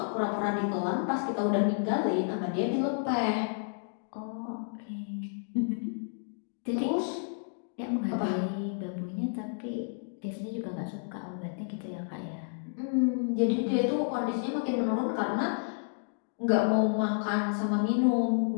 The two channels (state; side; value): silent; right; digital silence